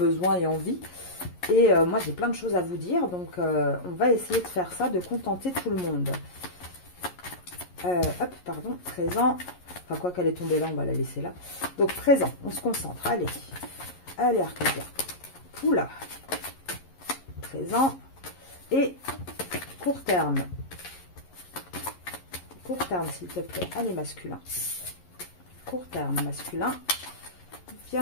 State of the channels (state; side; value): late; right; 11 ms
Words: et envie. Et moi, j'ai plein de choses à vous dire. Donc, on va essayer de faire ça, de contenter tout le monde. Hop, pardon, présent. Enfin, quoi qu'elle est tombée là, on va la laisser là. Donc, présent, on se concentre. Allez, allez, Arcadia. Oula. Présent. Et court terme. Court terme, s'il te plaît. Allez, masculin. Court terme, masculin.